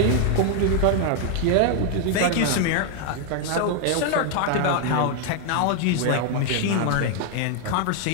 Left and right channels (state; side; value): different; both; correlation 0.00